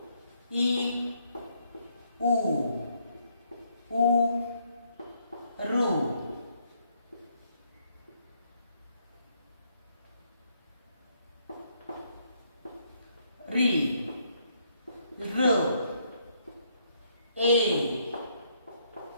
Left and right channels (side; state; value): both; inverted; correlation -0.72